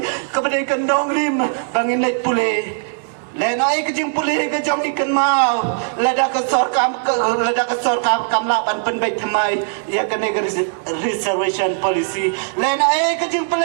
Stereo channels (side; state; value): left; silent; digital silence